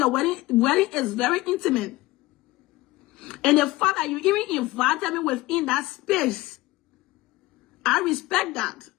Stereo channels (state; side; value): quieter; right; 19.4 dB